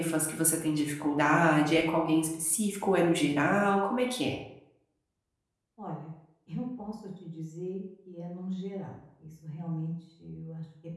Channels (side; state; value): both; identical; correlation 1.00